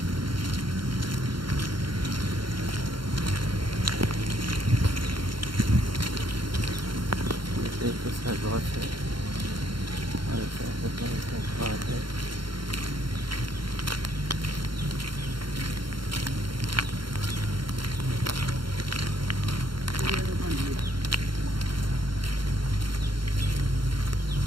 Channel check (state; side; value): late; left; 0.73 ms